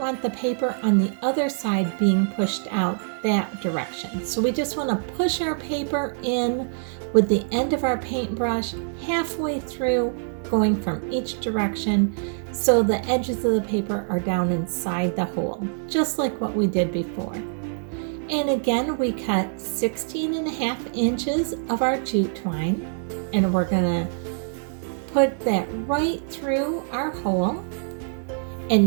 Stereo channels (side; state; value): left; silent; digital silence